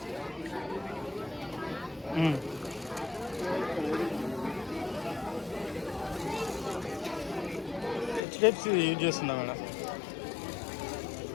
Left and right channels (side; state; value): right; drops out; at 8.2 s